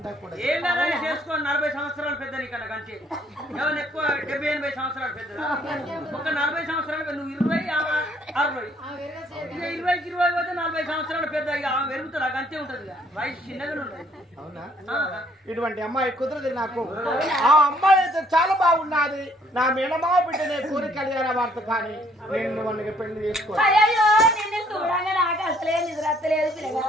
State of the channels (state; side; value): normal; both; correlation 0.64